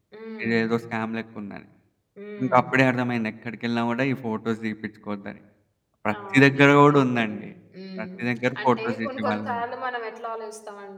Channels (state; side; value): identical; both; correlation 1.00